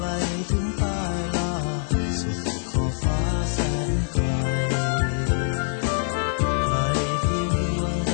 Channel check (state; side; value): silent; right; digital silence